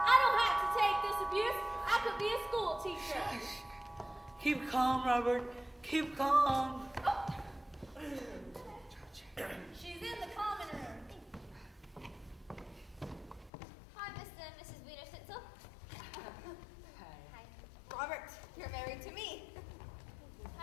I don't have to take this abuse. I could be a school teacher. Keep calm, Robert. Keep calm. She's in the common room. Hi, Mr. and Mrs. Wiener Snitchell. Hi. Robert, you're married to me.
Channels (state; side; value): drops out; right; at 13.5 s